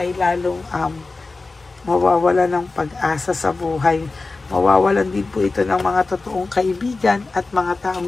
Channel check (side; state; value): right; quieter; 3.7 dB